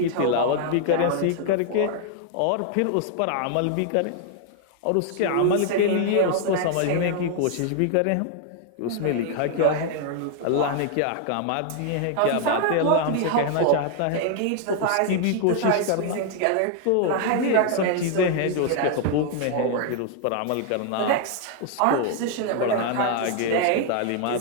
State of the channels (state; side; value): different; both; correlation 0.00